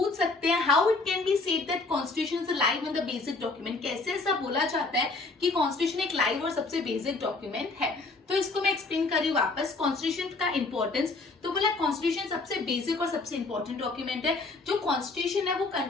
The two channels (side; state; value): right; quieter; 3.6 dB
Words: सकते हैं how it can be said that constitution is live and the basic document. कैसे ऐसा बोला जाता है कि कॉन्स्टिट्यूशन एक लाइव और सबसे बेसिक डॉक्यूमेंट है? तो इसको मैं एक्सप्लेन कर रही हूँ वापस। कॉन्स्टिट्यूशन का इंपॉर्टेंस, तो बोला कॉन्स्टिट्यूशन सबसे बेसिक और सबसे इंपॉर्टेंट डॉक्यूमेंट है। जो कॉन्स्टिट्यूशन है वो